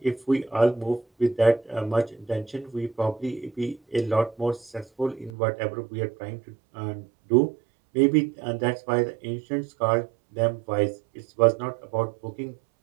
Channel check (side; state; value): left; drops out; at 5.3 s